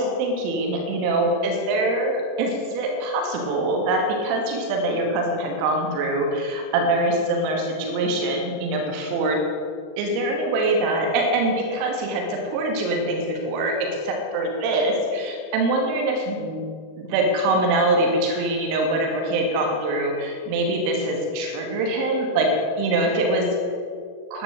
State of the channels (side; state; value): left; late; 39 ms